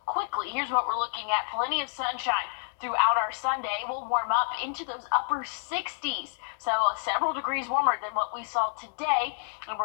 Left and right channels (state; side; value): silent; right; digital silence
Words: quickly. Here's what we're looking at. Plenty of sunshine throughout our Sunday. We'll warm up into those upper 60s. So several degrees warmer than what we saw today. And